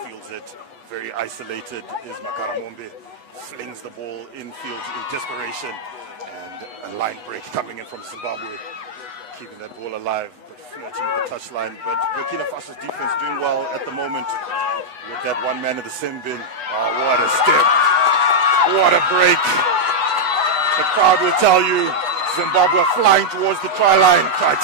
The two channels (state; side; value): late; left; 8.1 ms